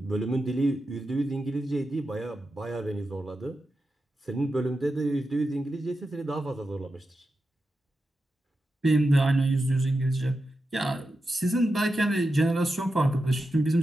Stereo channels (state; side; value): normal; both; correlation 0.89